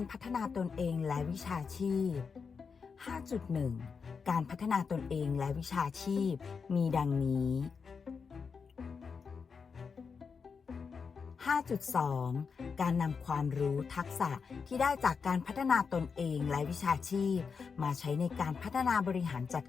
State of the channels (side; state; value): right; quieter; 5.6 dB